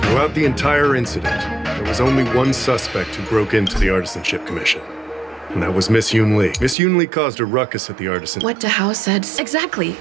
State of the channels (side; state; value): left; drops out; at 6.8 s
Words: Throughout the entire incident, there was only one suspect who broke into the Artisanship Commission. And that was Miss Yunli. Miss Yunli caused a ruckus at the Artisan... What Dahao said. Exactly.